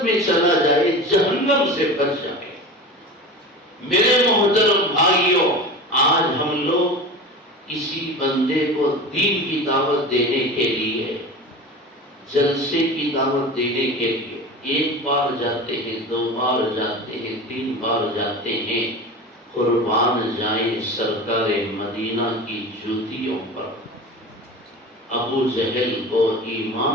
میں چلا جائے، جہنم سے بچ جائے۔ میرے محترم بھائیوں، آج ہم لوگ کسی بندے کو دین کی دعوت دینے کے لیے، جلسے کی دعوت دینے کے لیے 1 بار جاتے ہیں، 2 بار جاتے ہیں، 3 بار جاتے ہیں، قربان جائیں سرکار مدینہ کی جوتیوں پر۔ ابو جہل کو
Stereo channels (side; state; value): both; normal; correlation 0.32